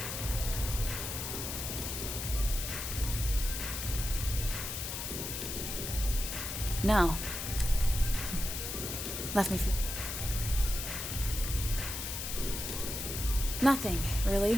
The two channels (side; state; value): left; noise; hiss, 4 dB below the sound